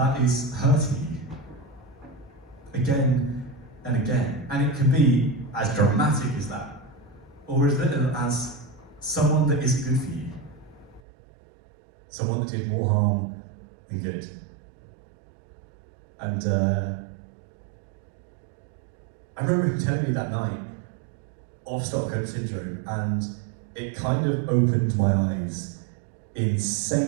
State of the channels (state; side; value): drops out; left; at 11.0 s